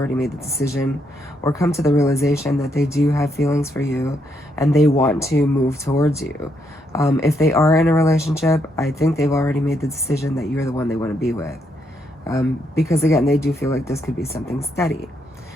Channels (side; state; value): both; normal; correlation 0.76